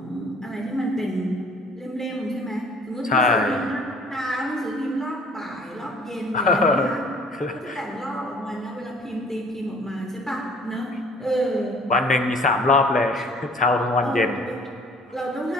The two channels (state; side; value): normal; both; correlation 0.54